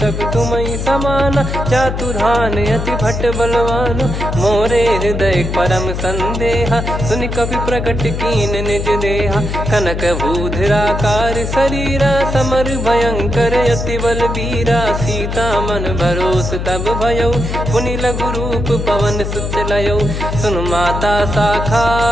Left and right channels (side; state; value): left; noise; hum, 4 dB below the sound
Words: तुम समाना चातुधान अति भट्ट बलवान। मोरे हृदय परम संदेहा सुनि कपि प्रकट कीन निज देहा। कनक भूधराकार शरीरा समर भयंकर अति बलबीरा। सीता मन भरोस तब भयऊ पुनि लघु रूप पवन सुत लयऊ। सुन माता शाखा